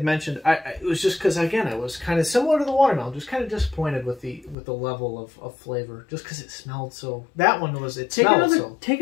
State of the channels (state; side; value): drops out; right; at 4.5 s